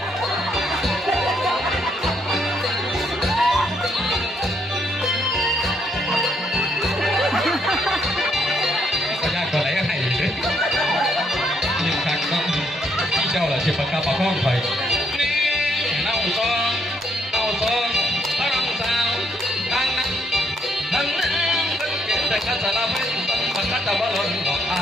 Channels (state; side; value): normal; both; correlation 0.72